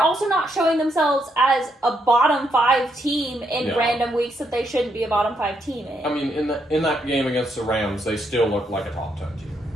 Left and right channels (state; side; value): normal; both; correlation 0.77